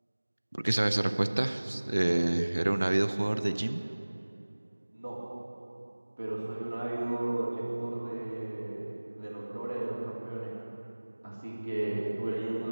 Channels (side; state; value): both; inverted; correlation -1.00